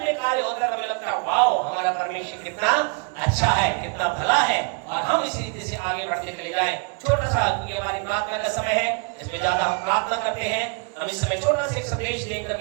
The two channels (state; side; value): quieter; left; 35.7 dB